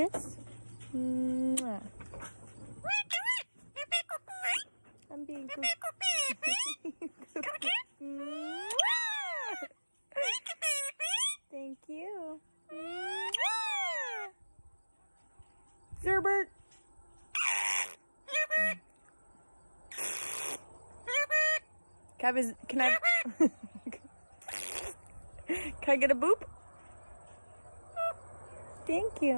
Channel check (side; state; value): both; inverted; correlation -1.00